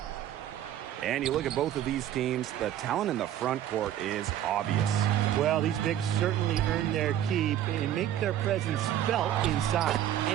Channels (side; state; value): left; quieter; 11.5 dB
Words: And you look at both of these teams, the talent in the front court is obvious. Well, these bigs certainly earn their keep and make their presence felt inside.